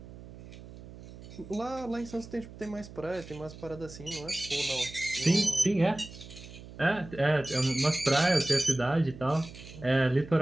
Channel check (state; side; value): noise; right; hum, 16 dB below the sound